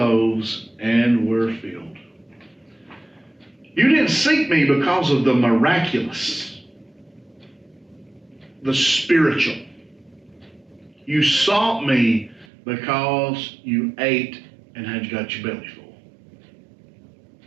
and were filled. You didn't seek me because of the miraculous, the spiritual. You sought me because you ate and had got your belly full.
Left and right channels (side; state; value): left; drops out; at 12.5 s